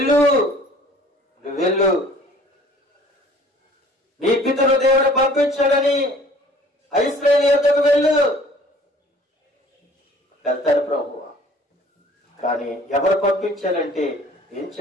నీ పితరు దేవుడు పంపించాడని ఇశ్రాయేలు యొద్దకు వెళ్ళు. వెళ్తారు ప్రభువా, కానీ ఎవరు పంపించాలంటే ఏం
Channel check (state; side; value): normal; both; correlation 0.52